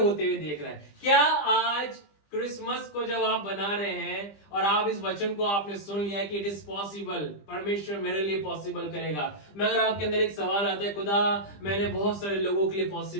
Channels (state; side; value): late; right; 20 ms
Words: हुए देख रहा है। क्या आज क्रिसमस को जब आप बना रहे हैं और आप इस वचन को आपने सुन लिया कि इट इज पॉसिबल, परमेश्वर मेरे लिए पॉसिबल करेगा, मगर आपके अंदर एक सवाल आता है, खुदा मैंने बहुत सारे लोगों के लिए